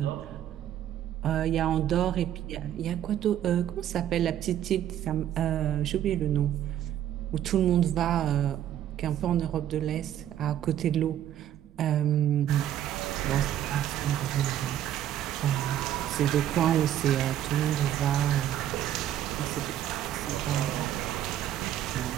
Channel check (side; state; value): left; quieter; 11.2 dB